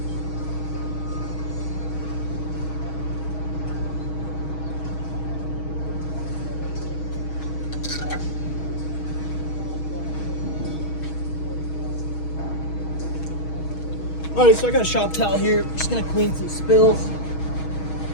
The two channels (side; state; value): right; late; 6.3 ms